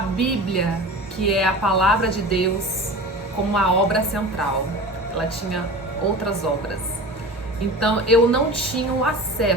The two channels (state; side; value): normal; both; correlation 0.34